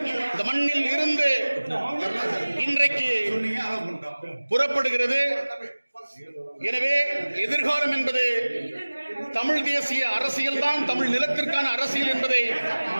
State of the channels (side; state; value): both; inverted; correlation -1.00